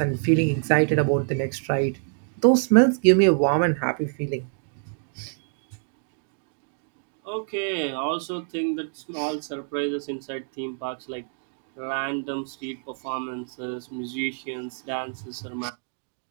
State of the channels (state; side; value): silent; left; 61 dB below the other